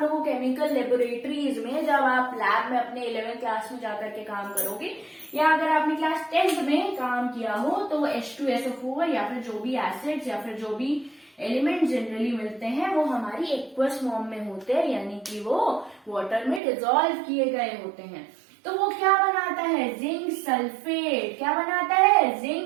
लोगों केमिकल लेबोरेटरीज में, जब आप लैब में अपने 11th क्लास में जाकर के काम करोगे, या अगर आपने क्लास 10th में काम किया हो, तो H2SO4 या फिर जो भी एसिड्स या फिर जो भी एलिमेंट जनरली मिलते हैं वो हमारी एक्वस फॉर्म में होते हैं, यानी कि वो वाटर में डिसॉल्व किए गए होते हैं। तो वो क्या बनाता है, जिंक सल्फेट। क्या बनाता है,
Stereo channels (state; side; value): drops out; left; at 16.6 s